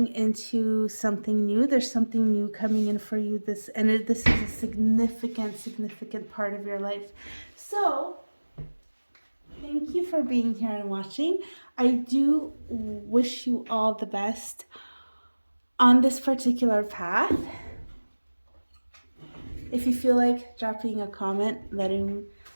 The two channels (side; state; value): both; inverted; correlation -1.00